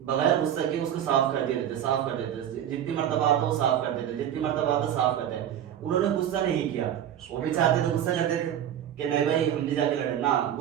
بغیر غصہ کے اس کو صاف کر دیتے، جتنی مرتبہ آتا وہ صاف کرتے تھے، جتنی مرتبہ آتا صاف کرتے. انہوں نے غصہ نہیں کیا، وہ بھی چاہتے تو غصہ کرتے تھے کہ نہیں بھائی ہم بھی جا کے لڑیں، نہ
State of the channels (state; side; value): quieter; left; 10.3 dB